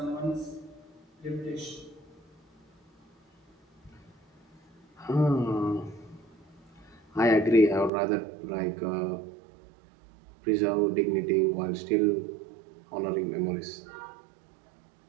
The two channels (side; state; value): left; drops out; at 7.9 s